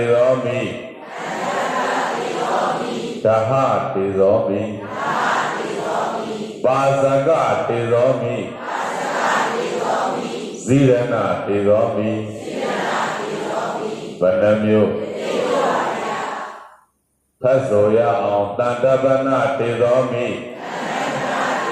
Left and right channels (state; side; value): identical; both; correlation 1.00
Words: ရောမိဓဟတေရောမိပါဇကတေရောမိဇိရဏတေရောမိ ဘယ်နှမျိုးဖတ်ဆိုရအောင်တန်တပနာတေသောမိ